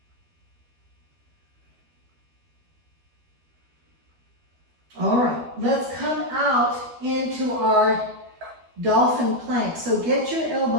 All right, let's come out into our dolphin plank. So get your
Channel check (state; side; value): late; left; 12 ms